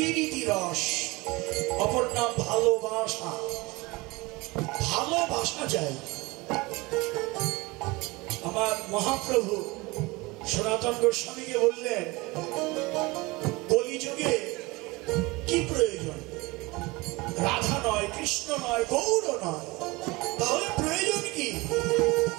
রস, অপর নাম ভালোবাসা। ভালোবাসা চাই। আমার মহাপ্রভু সনাতন গোস্বামীকে বললেন কলিযুগে কি প্রয়োজন? রাধা নয়, কৃষ্ণ নয়, গৌর নয়, তাহলে প্রয়োজন কি?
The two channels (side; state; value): left; quieter; 23.5 dB